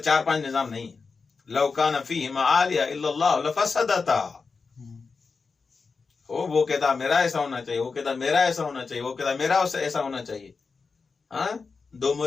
4-5 نظام نہیں ہے. لو کان فیہما آلیہ الا اللہ لفسدتا. وہ کہتا میرا ایسا ہونا چاہیے، وہ کہتا میرا ایسا ہونا چاہیے، وہ کہتا میرا ایسا ہونا چاہیے. ہاں، 2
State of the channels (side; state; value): right; quieter; 4.7 dB